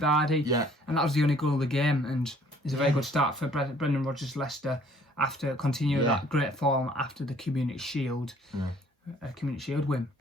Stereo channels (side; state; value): both; normal; correlation 0.58